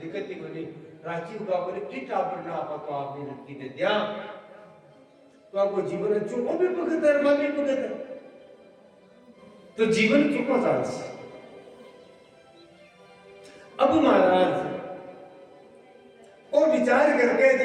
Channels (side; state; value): both; identical; correlation 1.00